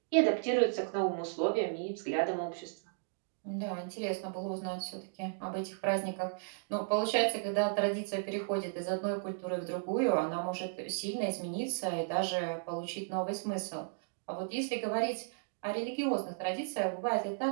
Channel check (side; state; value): left; silent; digital silence